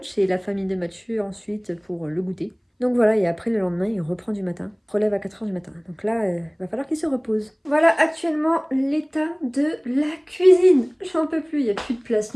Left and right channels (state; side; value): identical; both; correlation 1.00